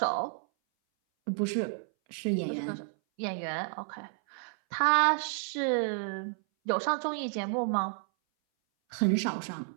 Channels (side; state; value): left; silent; 57 dB below the other